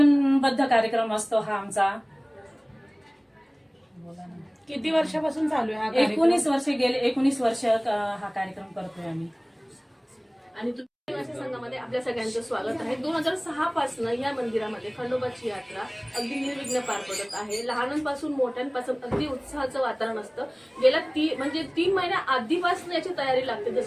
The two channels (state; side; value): identical; both; correlation 1.00